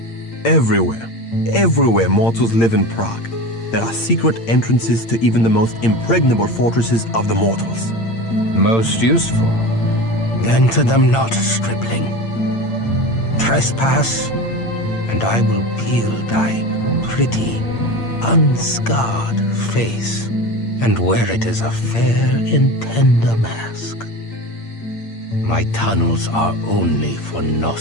Everywhere. Everywhere mortals live in Prague. There are secret entrances to even the most impregnable fortresses of the mortals. Most useful. Enter them not, stripling. Trespass, and I will peel thy pretty, unscarred face and wear it as a fair and tender mask. My tunnels are only for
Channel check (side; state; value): right; late; 8.8 ms